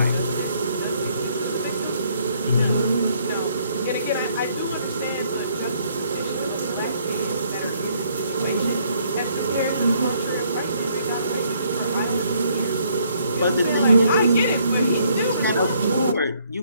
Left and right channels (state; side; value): inverted; both; correlation -0.67